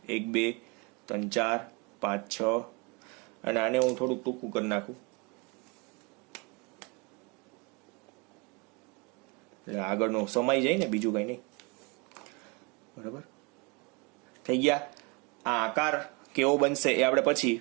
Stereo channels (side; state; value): left; quieter; 29.0 dB